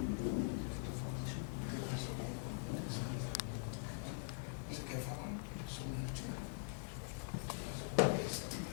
Você quer falar? Só um minutinho.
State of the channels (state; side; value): silent; right; digital silence